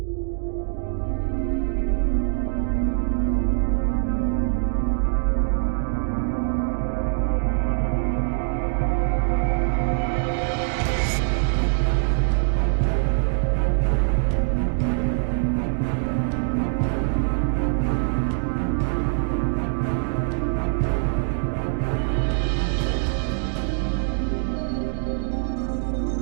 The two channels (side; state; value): left; silent; digital silence